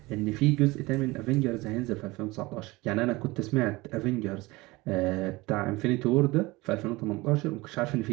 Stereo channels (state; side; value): quieter; left; 21.8 dB